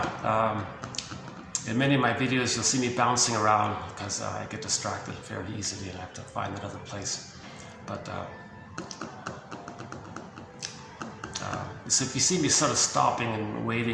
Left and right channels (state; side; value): identical; both; correlation 1.00